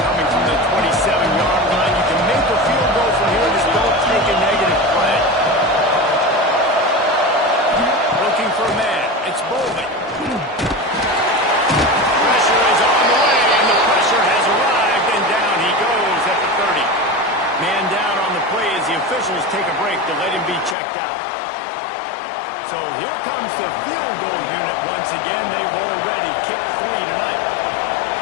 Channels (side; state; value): right; drops out; at 20.8 s